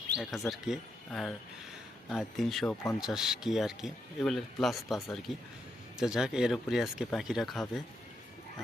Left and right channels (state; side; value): normal; both; correlation 0.81